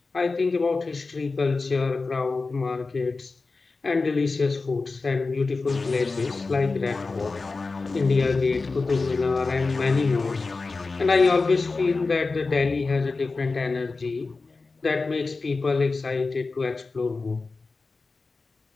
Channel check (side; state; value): right; quieter; 3.9 dB